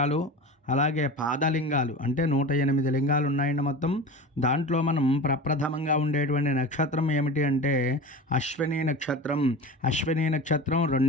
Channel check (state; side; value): normal; both; correlation 0.32